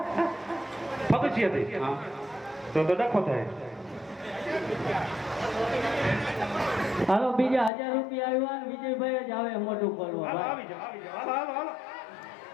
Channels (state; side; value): drops out; right; at 7.7 s